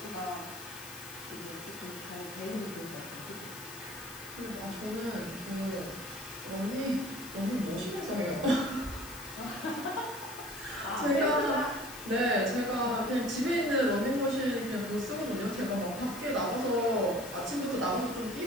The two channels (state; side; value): noise; left; hiss, 14 dB below the sound